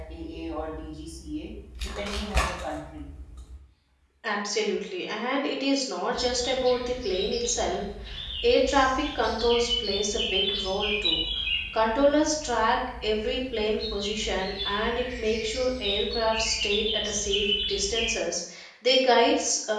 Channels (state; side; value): identical; both; correlation 1.00